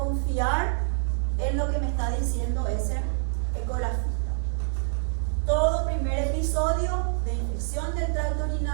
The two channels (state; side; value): silent; left; digital silence